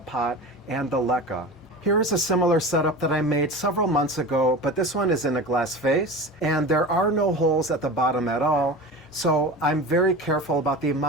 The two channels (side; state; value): both; normal; correlation 0.31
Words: and the LECA. Here is a similar setup that I made several months ago, but this one is in a glass vase and there are no holes at the bottom at all. So I'm very careful about the